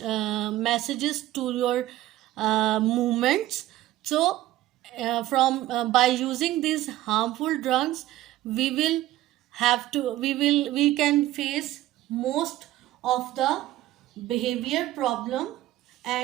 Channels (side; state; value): left; quieter; 15.2 dB